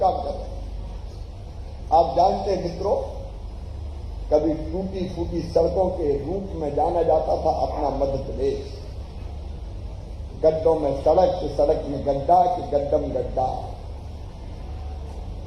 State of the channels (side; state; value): both; identical; correlation 1.00